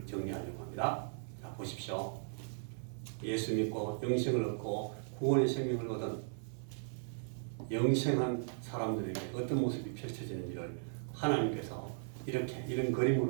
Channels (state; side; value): silent; left; 53 dB below the other